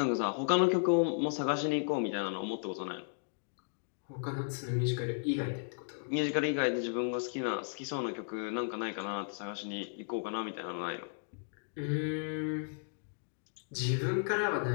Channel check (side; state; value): right; silent; digital silence